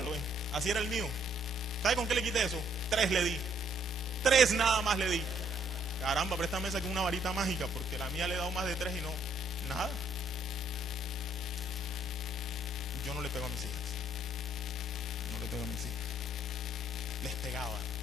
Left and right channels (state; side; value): normal; both; correlation 0.67